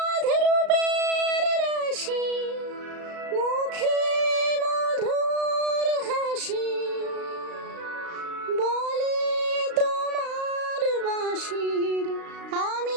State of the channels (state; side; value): late; left; 35 ms